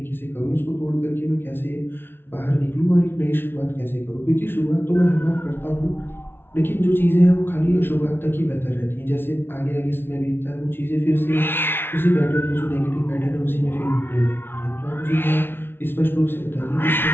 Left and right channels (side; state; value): right; late; 0.11 ms